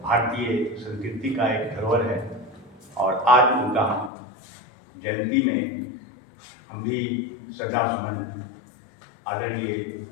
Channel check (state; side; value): drops out; right; at 4.1 s